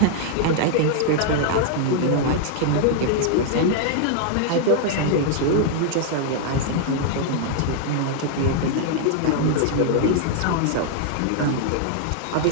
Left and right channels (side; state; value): both; different; correlation 0.00